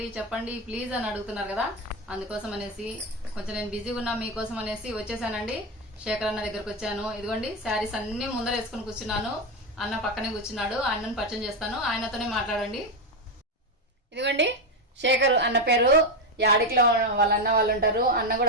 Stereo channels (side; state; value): both; normal; correlation 0.09